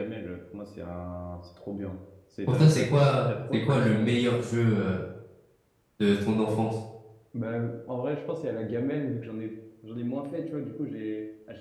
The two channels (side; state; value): both; identical; correlation 1.00